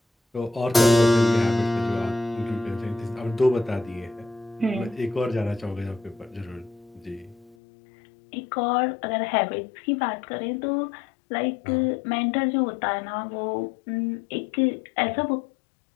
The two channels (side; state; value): right; drops out; at 7.6 s